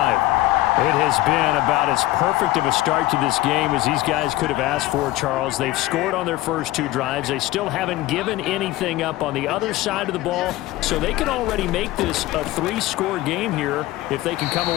It has been about as perfect of a start to this game as these guys could have asked for, Charles. They've scored on their first 2 drives. They still haven't given anything up on the other side of the ball, so they can already make this a 3-score game here if they can come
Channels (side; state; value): right; quieter; 16.9 dB